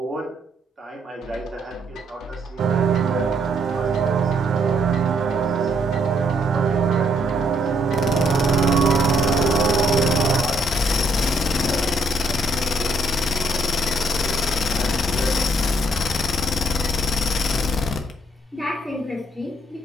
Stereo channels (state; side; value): normal; both; correlation 0.71